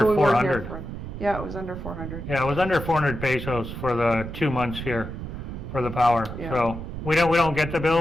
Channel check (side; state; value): right; noise; rumble, 8 dB below the sound